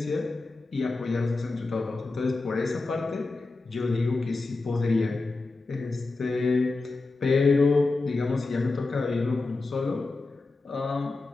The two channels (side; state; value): right; quieter; 3.6 dB